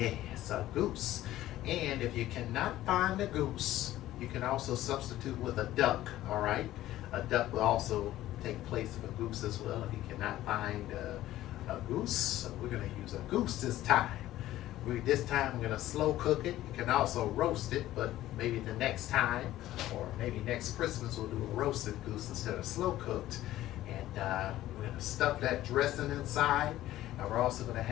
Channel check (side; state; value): right; quieter; 14.6 dB